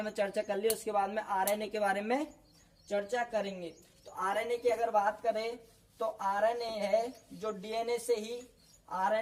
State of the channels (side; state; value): both; identical; correlation 1.00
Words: में चर्चा कर ली, उसके बाद में आरएनए के बारे में चर्चा करेंगे। तो आरएनए की अगर बात करें तो आरएनए है जो डीएनए से ही